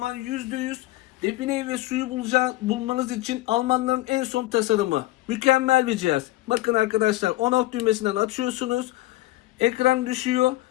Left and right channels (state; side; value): quieter; right; 17.7 dB